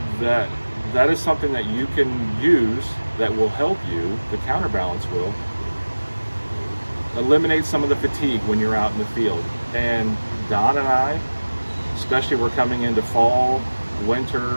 that is something that you can use that will help you. The counterbalance will eliminate some of the fatigue when you're out in the field. And Don and I, especially we're coming into fall, winter,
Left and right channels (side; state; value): both; inverted; correlation -1.00